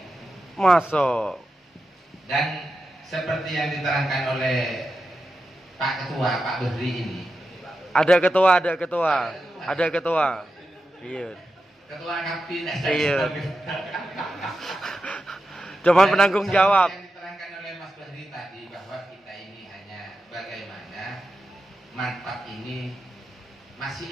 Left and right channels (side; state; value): both; normal; correlation 0.90